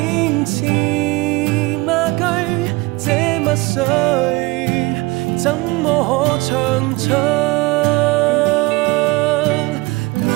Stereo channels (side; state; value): left; quieter; 23.0 dB